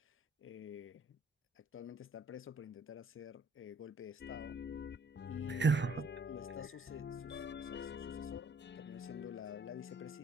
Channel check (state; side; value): normal; both; correlation 0.60